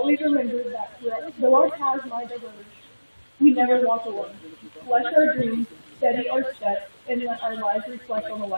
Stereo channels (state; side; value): inverted; both; correlation -1.00